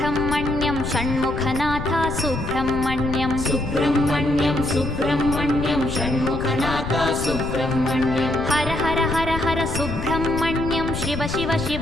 Shanmukhanath Subrahmanyam Subrahmanyam Subrahmanyam Shanmukhanath Subrahmanyam Har Har Har Har Subrahmanyam Shiva Shiva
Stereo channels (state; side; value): noise; left; rumble, 6 dB below the sound